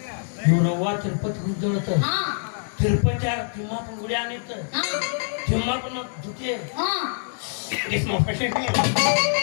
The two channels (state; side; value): silent; right; digital silence